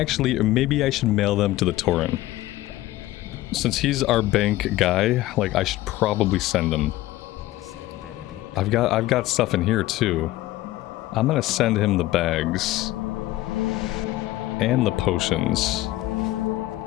maybe I should mail them to the Tauren. Since he's our bank guy, like, I should probably send him. That better be. I've got stuff in here too. I'm gonna send him the bags and the potions.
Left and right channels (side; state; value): right; quieter; 16.5 dB